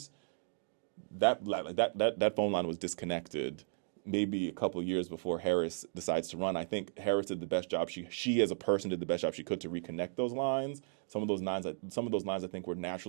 That phone line was disconnected maybe a couple of years before Harris decides to run. I think Harris did the best job. She as a person did the best job she could to reconnect those lines. Some of those lines I think were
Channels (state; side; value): silent; left; digital silence